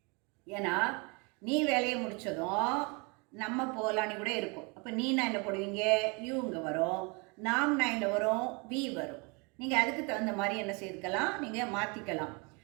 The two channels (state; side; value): quieter; left; 30.8 dB